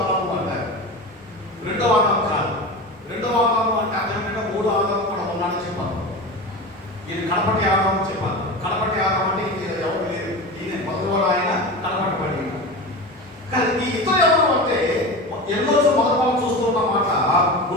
అంటారు. రెండో ఆదాము కాదు. రెండో ఆదాము అంటే అదేంటంటే మూడో ఆదాము కూడా ఉన్నాడని చెప్పాను. ఇది కడపటి ఆదాము చెప్పాను. కడపటి ఆదాము అంటే ఇది ఎవరు లేదు, ఈయన మొదలు ఆయన కడపటి పడి. కానీ ఈ ఇతరు ఎవరు అంటే ఎన్నో మొదలు చూస్తున్న మాట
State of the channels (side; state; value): both; normal; correlation 0.27